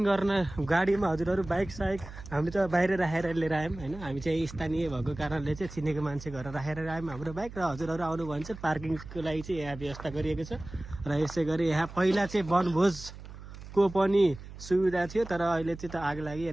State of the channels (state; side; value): noise; right; hum, 14 dB below the sound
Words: गर्न गाडीमा हजुरहरू बाइक साइक हामी त बाहिर राखेर लिएर आयौँ होइन। हामी चाहिँ स्थानीय भएको कारणले चाहिँ चिनेको मान्छे घर राखेर आयौँ हाम्रो बाइक। र हजुरहरू आउनु भने चाहिँ पार्किङको लागि चाहिँ यहाँ व्यवस्था गरिएको छ। र यसै गरी यहाँ पहिला चाहिँ वनभोजको पनि सुविधा थियो, तर अहिले चाहिँ त आग लागि